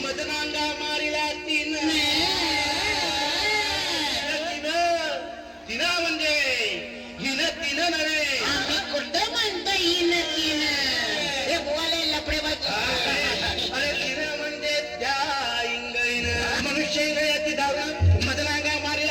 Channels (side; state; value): both; identical; correlation 1.00